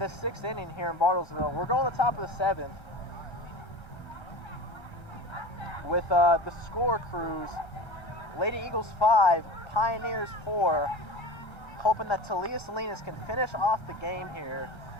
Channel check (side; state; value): right; late; 1.3 ms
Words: 6th inning here in Bartlesville. We're going to the top of the 7th with the score, Crews. Lady Eagles 5, Pioneers 4. Hoping that Talia Salinas can finish off the game here.